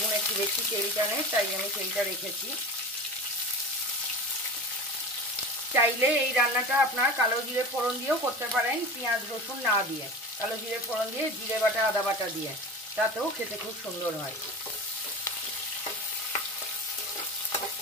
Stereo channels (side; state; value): both; normal; correlation 0.31